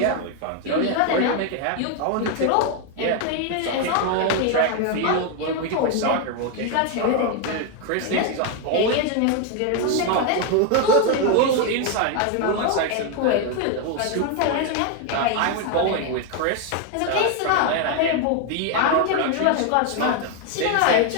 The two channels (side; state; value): both; different; correlation 0.01